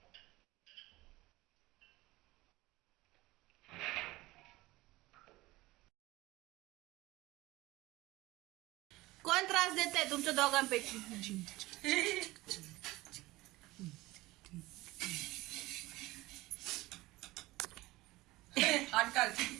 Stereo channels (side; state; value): left; quieter; 19.5 dB